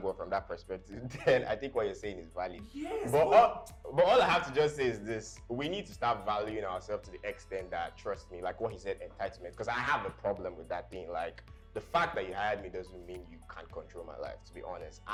from that perspective, then I think what you're saying is valid. Yes. But all I have to just say is this: we need to start valuing ourselves to the extent that, trust me, like what he said, entitlement. Because I have a problem with that thing, like. The fact that you hired me doesn't mean you can't control my life, to be honest.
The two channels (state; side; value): identical; both; correlation 1.00